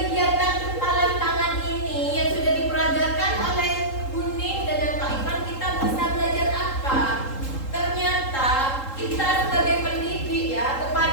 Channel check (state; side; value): late; right; 3.8 ms